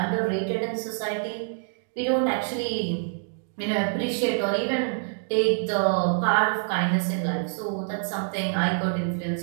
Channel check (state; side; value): silent; left; digital silence